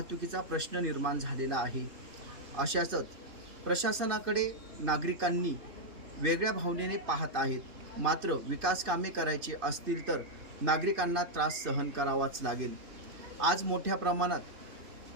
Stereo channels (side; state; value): left; late; 3.2 ms